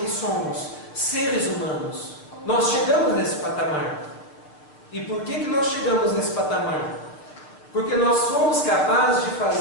somos, seres humanos. Nós chegamos nesse patamar. E por que nós chegamos nesse patamar? Porque nós somos capazes de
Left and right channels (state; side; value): late; right; 6.8 ms